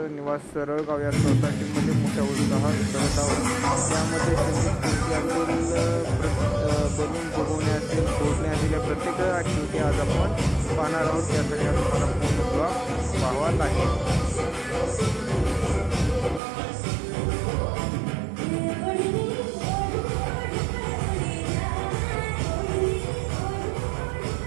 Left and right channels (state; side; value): drops out; left; at 16.4 s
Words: निवास सरळगाव या सोसायटीमध्ये मोठ्या उत्साहात करत आहोत। त्यामध्ये बलून बघवणे असेल, फोडणे असेल, या प्रत्येक ॲक्टिव्हिटी आज आपण पाहणार आहोत। त्यासाठी तुम्हाला पूर्ण ब्लॉग पाहावा लागेल।